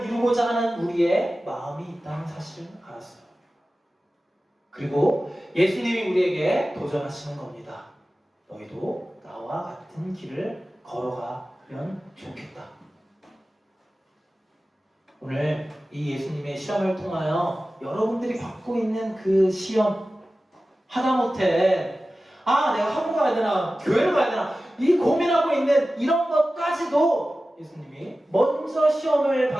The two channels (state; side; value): normal; both; correlation 0.95